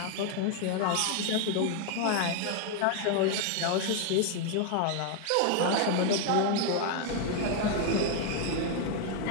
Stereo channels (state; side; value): different; both; correlation 0.01